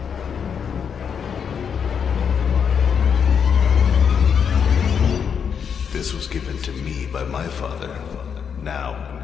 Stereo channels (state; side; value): quieter; right; 7.1 dB